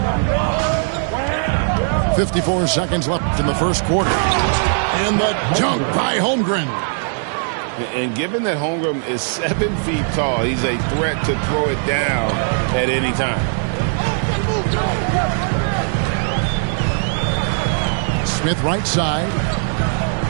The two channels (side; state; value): left; silent; digital silence